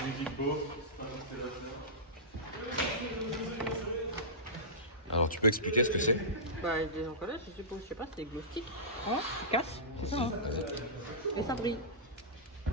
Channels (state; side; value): normal; both; correlation -0.17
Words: Alors, tu peux expliquer ce que c'est? Bah, des encollages, je suppose, je sais pas, c'est des glow sticks. Hein, tu casses, c'est ça, hein. Et ça brille.